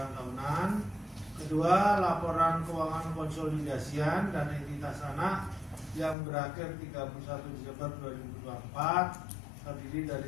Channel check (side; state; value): right; drops out; at 6.2 s